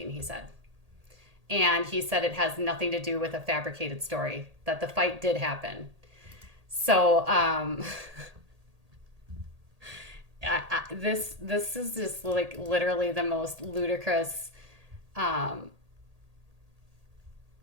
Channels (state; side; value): late; left; 1.8 ms